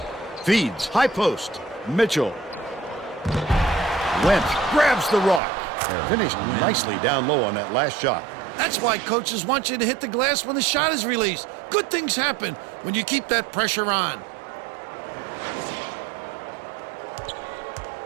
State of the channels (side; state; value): left; drops out; at 5.4 s